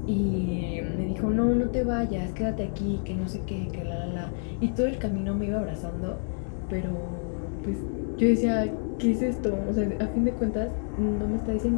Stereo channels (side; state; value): right; silent; 59 dB below the other